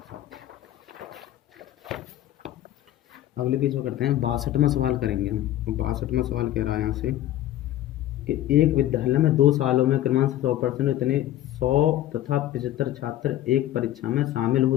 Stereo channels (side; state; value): right; quieter; 13.3 dB